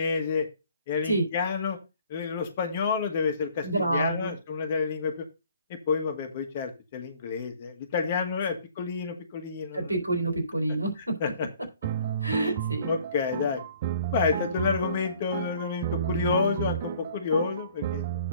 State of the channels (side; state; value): both; inverted; correlation -0.56